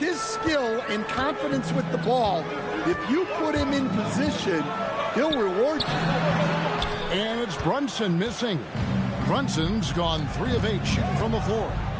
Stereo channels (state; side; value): identical; both; correlation 1.00